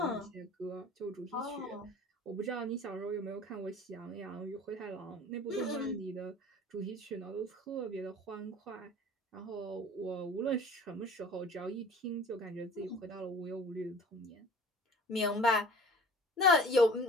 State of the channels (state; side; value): normal; both; correlation 0.44